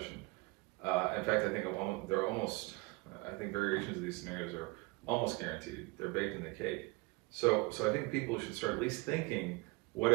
In fact, I think they're almost, I think variations of these scenarios are almost guaranteed. They're baked in the cake. So I think people should start at least thinking, what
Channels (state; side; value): quieter; left; 25.1 dB